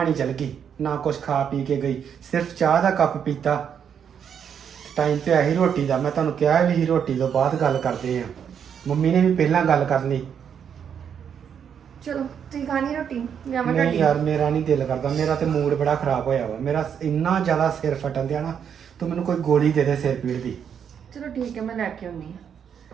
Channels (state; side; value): quieter; left; 7.9 dB